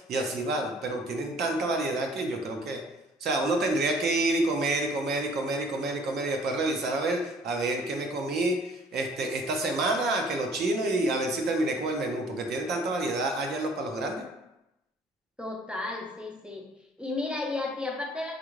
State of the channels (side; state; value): both; normal; correlation 0.55